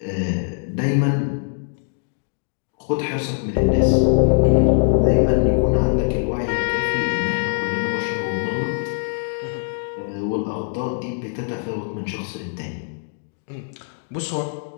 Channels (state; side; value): silent; right; digital silence